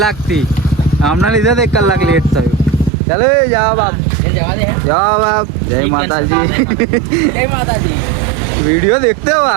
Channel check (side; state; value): left; drops out; at 2.9 s